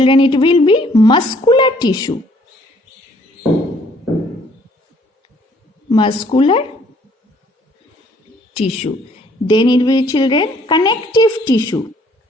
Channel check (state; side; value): normal; both; correlation 0.62